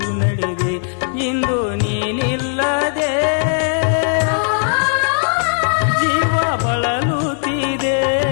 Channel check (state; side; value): silent; right; digital silence